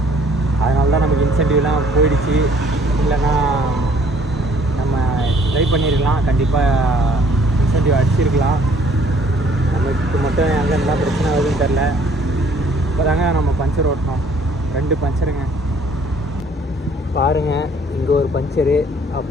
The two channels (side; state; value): both; normal; correlation 0.59